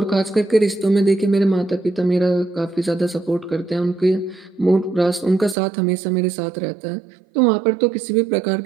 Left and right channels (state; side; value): drops out; left; at 5.6 s